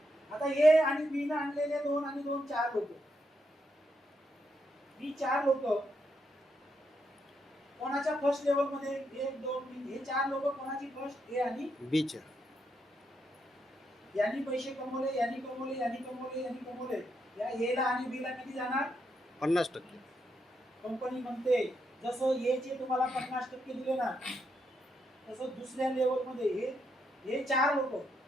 आता ए आणि बी ने आणलेले 2 आणि 2 4 लोक. ही 4 लोक कोणाच्या फर्स्ट लेवल मध्ये? 1 2 3. हे 4 लोक कोणाची फर्स्ट? ए आणि बी च्या. यांनी पैसे कमवले, यांनी कमवले, यांनी कमवले, यांनी कमवले. या ए ला आणि बी ला किती जाणार? 50%. कंपनी म्हणते जसं ए चे तुम्हाला 50% दिले ना, तसं दुसऱ्या लेवल मध्ये हे 4 लोक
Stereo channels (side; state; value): both; normal; correlation 0.80